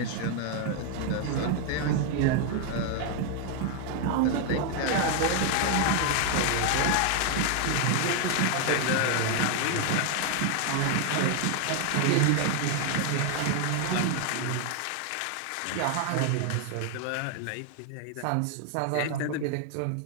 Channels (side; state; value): both; different; correlation 0.00